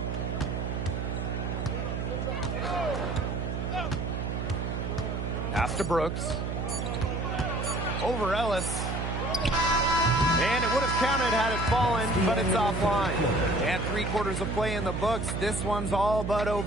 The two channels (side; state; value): right; noise; hum, 2 dB below the sound